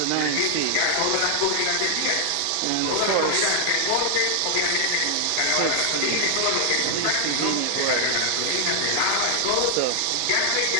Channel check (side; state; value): both; different; correlation 0.00